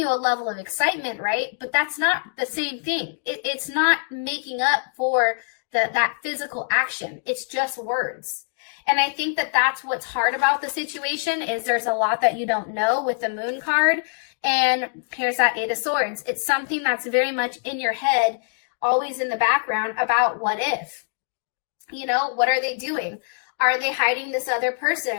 a level of excitement, right? But that's not the same thing. It's not making up for that physical action. It's just words. And I think that that's what's hard about the situation is there's a lot that you don't know with the Moon card. And here's that Eight of Swords. It's something that's very much in your head, always in the background about what if. You know, what are they doing? Are they hiding this other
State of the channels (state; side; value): silent; right; 63 dB below the other